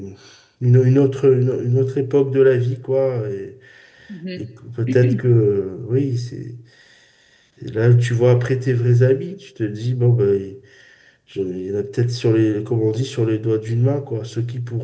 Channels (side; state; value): both; identical; correlation 1.00